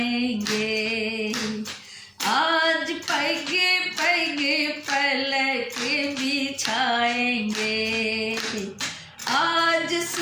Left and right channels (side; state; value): both; identical; correlation 1.00